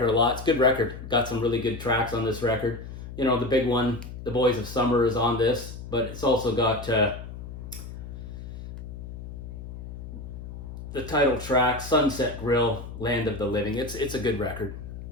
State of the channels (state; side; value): noise; left; hum, 10 dB below the sound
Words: a lot. It's a good record. Got some really good tracks on this record. The big one, The Boys of Summer, is on this, but it's also got the title track, Sunset Grill, Land of the Living. It's a good record,